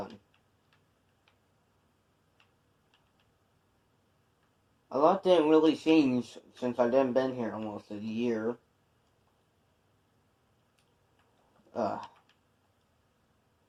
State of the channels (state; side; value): identical; both; correlation 1.00